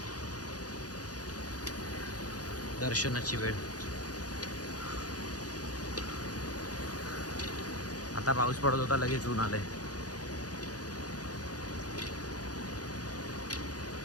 दर्शनाची वेळ. आता पाऊस पडत होता लगेच ऊन आलंय.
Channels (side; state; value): right; late; 0.68 ms